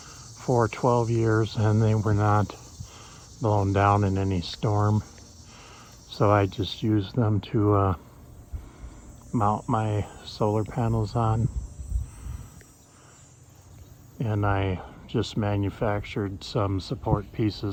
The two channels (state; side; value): identical; both; correlation 1.00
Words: for 12 years and they were not blown down in any storm. So I just used them to mount my solar panels on. And I just manufactured some support